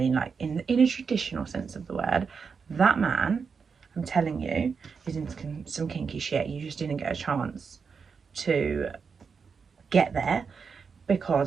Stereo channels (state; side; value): quieter; left; 5.7 dB